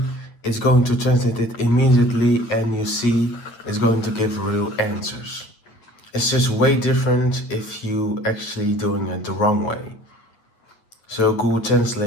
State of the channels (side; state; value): right; late; 8.8 ms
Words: It's going to translate it immediately, and you see it's going to give real answers. It's just way different if you actually doing it the wrong way. So Google